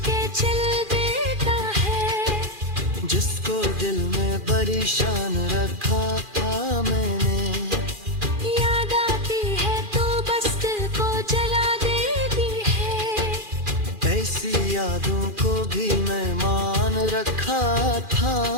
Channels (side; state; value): left; late; 2.4 ms